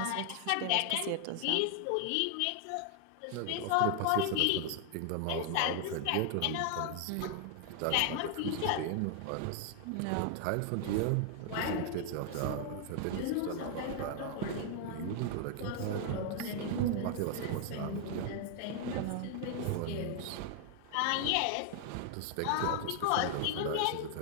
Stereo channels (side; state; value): both; different; correlation 0.00